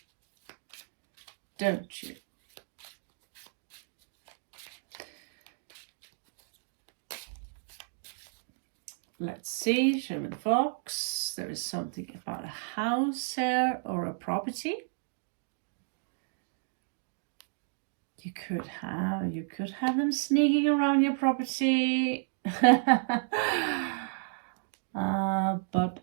Don't you? Let's see, show me the fox. There is something about a house here or a property. You could have them sneaking around your property. But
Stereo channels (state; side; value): silent; left; digital silence